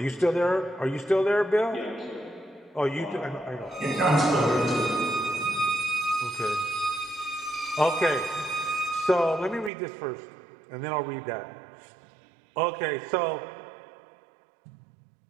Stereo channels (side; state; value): left; drops out; at 9.7 s